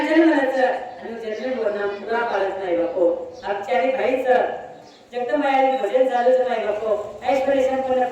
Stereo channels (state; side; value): identical; both; correlation 1.00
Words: जन्मलाच आणि जन्म बोलणं पुरा पाळत नाही बापू आपच्यारी भाईच जगदंबाई भजन चालूच नाही बापू ऐश्वर्य संपूर्ण